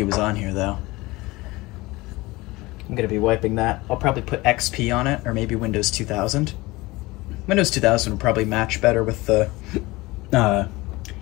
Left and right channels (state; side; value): quieter; right; 21.3 dB